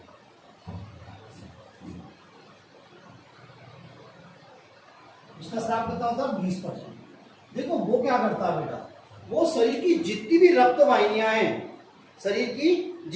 उसका स्राव कितना होता है 20%। देखो वो क्या करता है बेटा वो शरीर की जितनी भी रक्त वाहिनियां हैं, शरीर की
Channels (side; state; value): both; identical; correlation 1.00